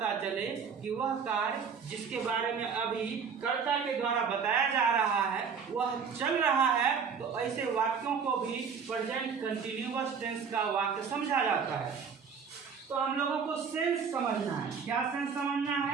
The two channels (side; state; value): left; quieter; 6.2 dB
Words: चले कि वह कार्य जिसके बारे में अभी कर्ता के द्वारा बताया जा रहा है वह चल रहा है, तो ऐसे वाक्यों को भी प्रेजेंट कंटिन्यूअस टेंस का वाक्य समझा जाता है। तो हम लोगों को सेंस समझना है। क्या सेंस समझना